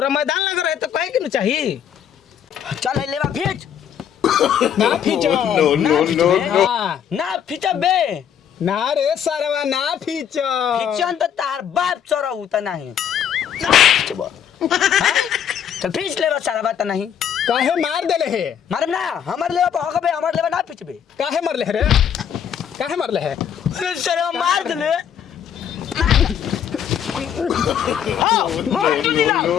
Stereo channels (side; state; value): right; quieter; 8.8 dB